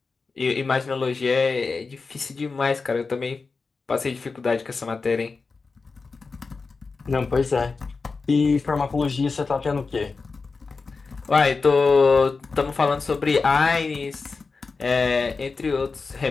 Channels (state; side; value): quieter; right; 4.4 dB